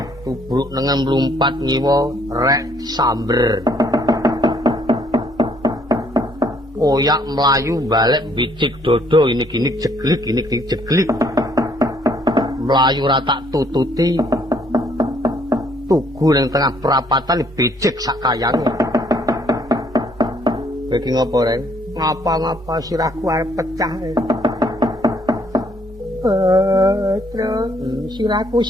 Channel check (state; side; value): normal; both; correlation 0.65